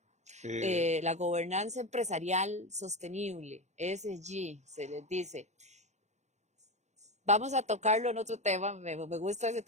La gobernanza empresarial sostenible, ESG, se les dice. Vamos a tocarlo en otro tema, me gusta ese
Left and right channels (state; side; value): late; left; 0.33 ms